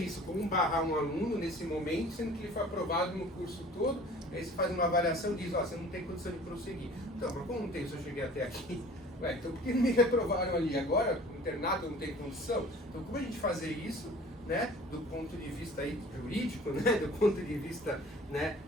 como barrar um aluno nesse momento, sendo que ele foi aprovado no curso todo, aí você faz uma avaliação e diz, você não tem condição de prosseguir. Então, mas como não tem, se eu cheguei até aqui? Então por que me reprovaram ali? Agora, no internato, eu não tenho condição? Então, como a gente fazer isso, né, do ponto de vista aí jurídico, né, do ponto de vista, né,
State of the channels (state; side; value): normal; both; correlation 0.47